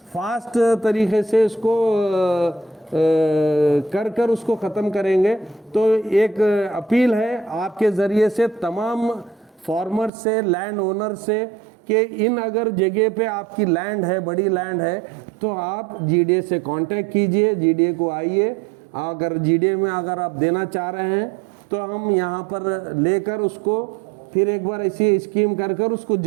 फास्ट तरीके से इसको कर उसको ख़त्म करेंगे। तो एक अपील है आपके ज़रिए से तमाम फार्मर से, लैंड ओनर से, कि इन अगर जगह पे आपकी लैंड है, बड़ी लैंड है, तो आप जीडीए से कांटेक्ट कीजिए, जीडीए को आइए। अगर जीडीए में अगर आप देना चाह रहे हैं तो हम यहाँ पर लेकर उसको फिर एक बार ऐसी स्कीम कर उसको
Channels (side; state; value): left; drops out; at 10.1 s